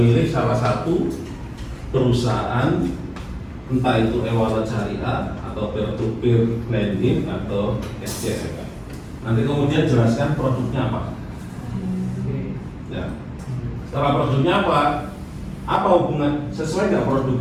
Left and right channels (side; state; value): both; identical; correlation 1.00